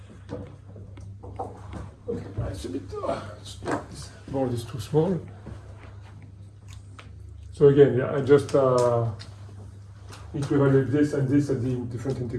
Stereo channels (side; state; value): both; identical; correlation 1.00